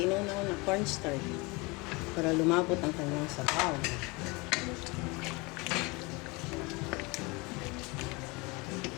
na cornstarch para lumapot ang kanyang sabaw.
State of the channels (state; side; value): quieter; right; 26.3 dB